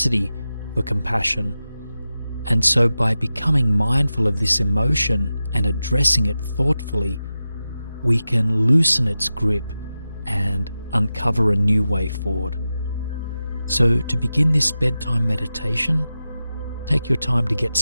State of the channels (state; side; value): inverted; both; correlation -0.92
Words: for compassion. And so by becoming mindful of this emotion and addressing it thoughtfully, we can loosen its grip and uncover a new way forward. So to begin this bedtime meditation, take your time to get